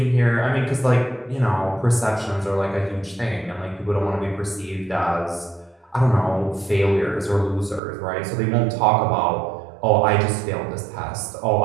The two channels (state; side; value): drops out; left; at 7.8 s